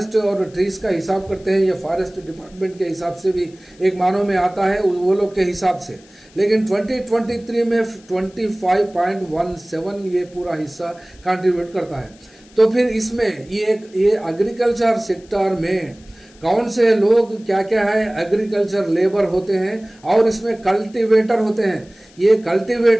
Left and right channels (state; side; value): noise; left; hiss, 27 dB below the sound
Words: और ट्रीज का हिसाब करते हैं। ये फॉरेस्ट डिपार्टमेंट के हिसाब से भी एक मानों में आता है वो लोग के हिसाब से, लेकिन 2023 में 25.17 ये पूरा हिस्सा कंट्रीब्यूट करता है। तो फिर इसमें ये एग्रीकल्चर सेक्टर में कौन से लोग क्या क्या है, एग्रीकल्चर लेबर होते हैं और इसमें कल्टीवेटर होते हैं। ये